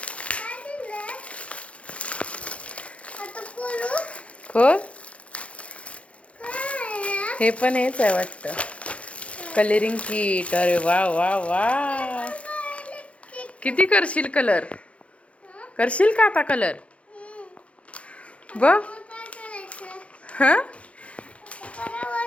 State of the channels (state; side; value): late; right; 0.062 ms